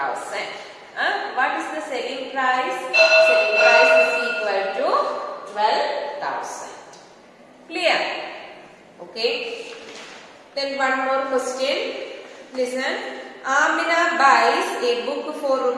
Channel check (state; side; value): identical; both; correlation 1.00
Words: What is the selling price? Selling price is equal to 12,000. Clear? Okay. Then one more question. Listen. Amina buys a book for